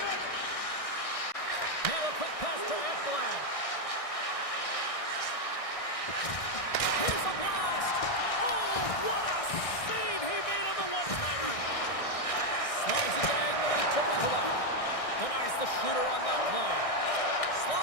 Now a quick pass to Ekblad. Here's a blast. Oh, what a save he made on the one-timer. Slides it diagonally to Mikola. Denies the shooter on that play.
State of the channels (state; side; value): late; right; 1.6 ms